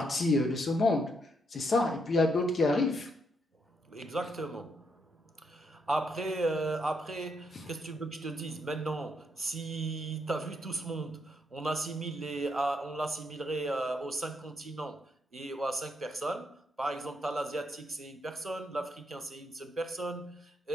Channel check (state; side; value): normal; both; correlation 0.77